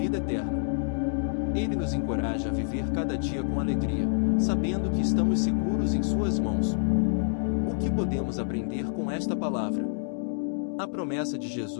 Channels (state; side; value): silent; right; digital silence